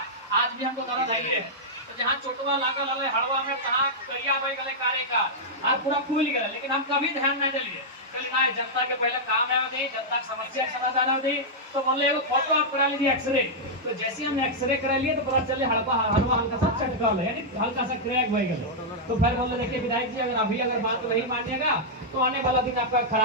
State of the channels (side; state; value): both; normal; correlation -0.07